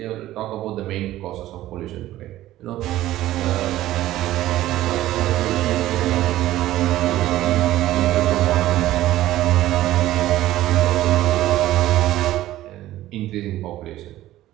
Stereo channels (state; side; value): quieter; left; 14.8 dB